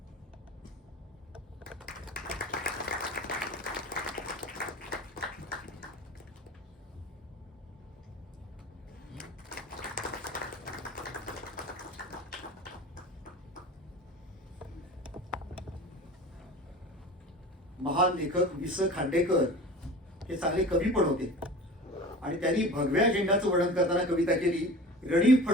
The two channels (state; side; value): normal; both; correlation 0.37